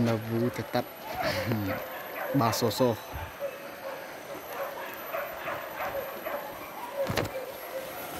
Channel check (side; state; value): both; identical; correlation 1.00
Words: buru tetap basoso.